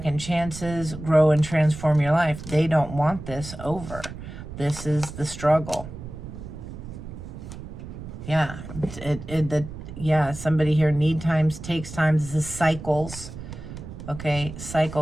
chances. Grow and transform your life. They don't want this over. This is the struggle. Yeah. Yeah, somebody here, need times, takes times. This is cycles. Okay,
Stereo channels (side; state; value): right; noise; rumble, 11 dB below the sound